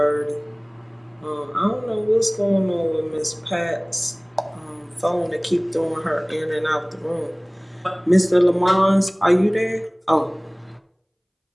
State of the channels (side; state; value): both; identical; correlation 1.00